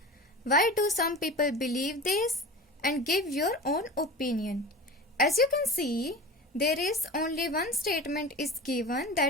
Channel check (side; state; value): both; normal; correlation 0.33